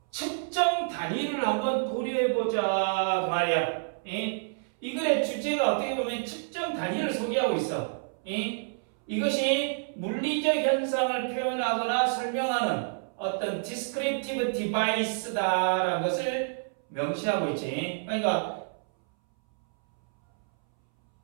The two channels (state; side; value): silent; left; 59 dB below the other